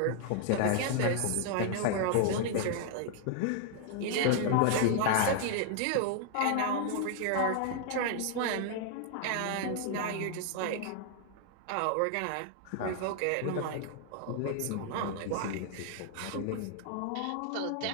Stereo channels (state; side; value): different; both; correlation 0.00